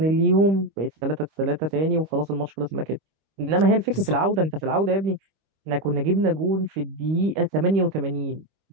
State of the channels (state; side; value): late; left; 25 ms